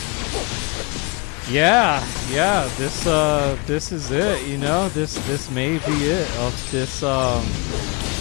Yeah, this is it, you know, this may be it of this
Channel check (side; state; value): right; quieter; 30.8 dB